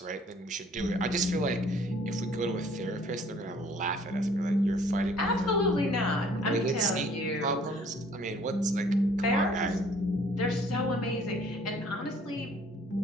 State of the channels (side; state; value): both; normal; correlation 0.57